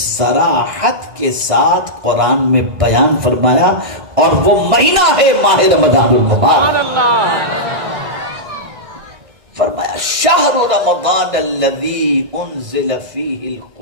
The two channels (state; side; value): late; left; 1.6 ms